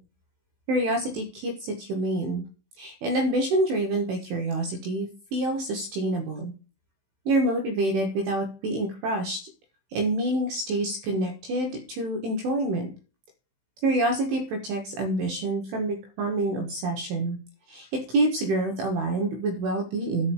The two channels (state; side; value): late; left; 16 ms